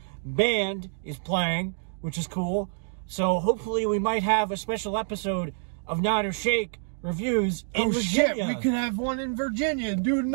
band is playing, which is cool. So hopefully we might have a special episode of Nod or Shake reviews in Virginia. Shit, we can have one in Virginia and do a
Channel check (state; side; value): silent; left; digital silence